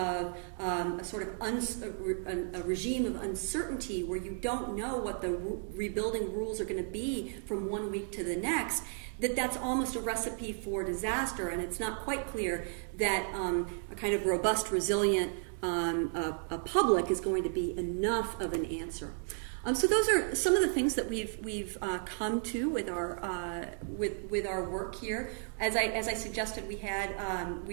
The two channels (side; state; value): left; silent; 55 dB below the other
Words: a sort of a regime of uncertainty where you don't know what the rebuilding rules are going to be from one week to the next, that's almost a recipe for disaster, and it's not quite clear that a kind of robust, resilient a public is going to be enough of an answer. So those are some of the things that we've come to with our work here. As I suggested,